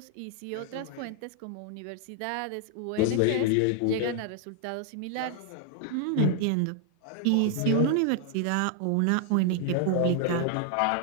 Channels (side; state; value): both; different; correlation 0.00